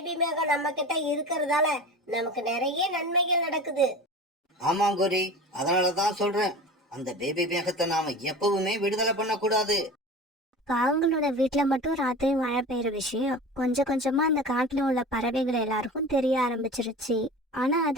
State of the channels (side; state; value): both; normal; correlation 0.35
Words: மேகம் நம்ம கிட்ட இருக்கிறதால நமக்கு நிறைய நன்மைகள் நடக்குது. ஆமா கோரி, அதனாலதான் சொல்றேன், அந்த பேபி மேகத்தை நாம எப்பவுமே விடுதலை பண்ண கூடாது. காவங்களோட வீட்டுல மட்டும் ராத்திரி மழை பெய்யுற விஷயம் கொஞ்சம் கொஞ்சமா அந்த காட்டுல உள்ள பறவைகள் எல்லாருக்கும் தெரிய ஆரம்பிச்சிருச்சு. ஆனா